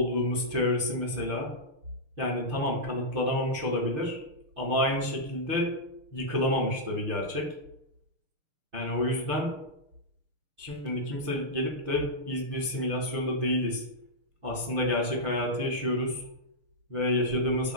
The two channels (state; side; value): late; left; 6.6 ms